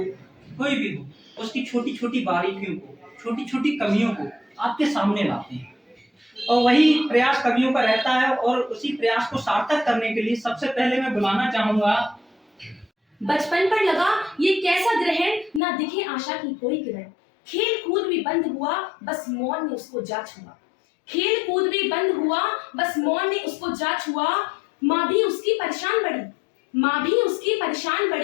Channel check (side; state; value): right; drops out; at 15.6 s